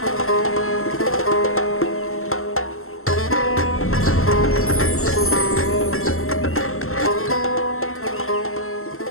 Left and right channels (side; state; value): right; late; 0.62 ms